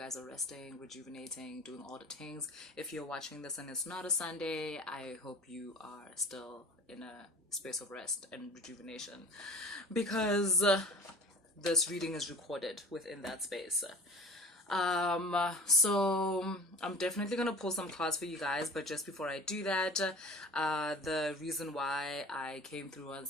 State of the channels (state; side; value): normal; both; correlation 0.41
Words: are resting, rejuvenating, doing all the things. If you're watching this and it's not a Sunday, I hope you are still in a space of rest and rejuvenation because this reading is recorded within that space. So I'm definitely gonna pull some cards for you guys, but just before I do that, the reason why I came through on